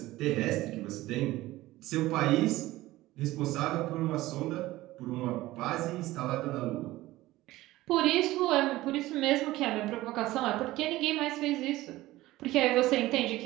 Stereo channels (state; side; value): quieter; left; 17.3 dB